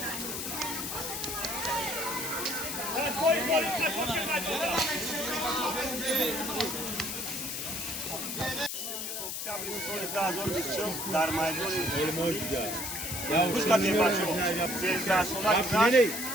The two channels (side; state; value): left; noise; hiss, 4 dB below the sound